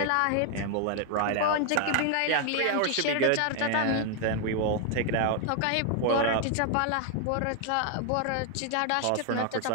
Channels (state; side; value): different; both; correlation 0.00